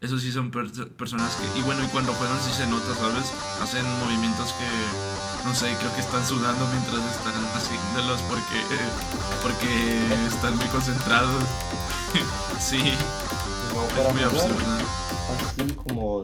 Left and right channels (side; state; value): both; identical; correlation 1.00